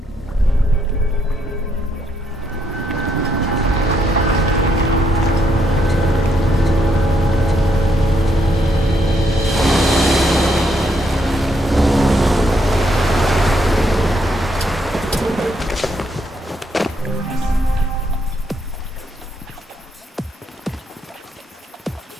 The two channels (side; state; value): both; normal; correlation 0.75